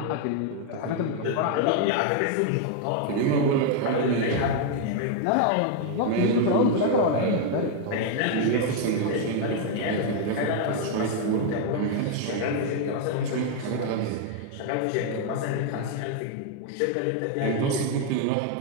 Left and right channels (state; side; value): different; both; correlation 0.00